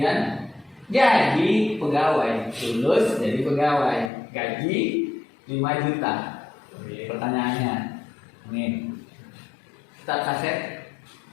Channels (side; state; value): right; drops out; at 4.1 s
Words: jadi pegawai, lulus jadi pegawai, gaji 5 juta. Pertanyaannya, nih, tetap saset?